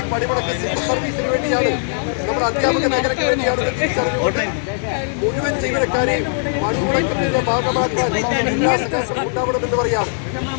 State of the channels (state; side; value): silent; right; 66 dB below the other